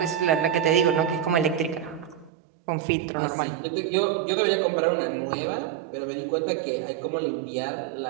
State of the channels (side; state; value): left; drops out; at 2.3 s